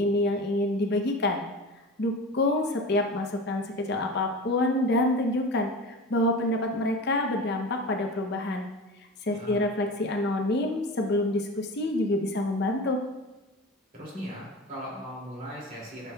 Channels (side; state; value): both; normal; correlation 0.32